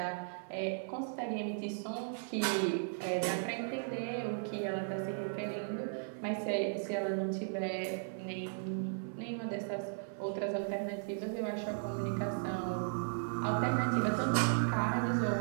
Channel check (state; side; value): silent; left; 54 dB below the other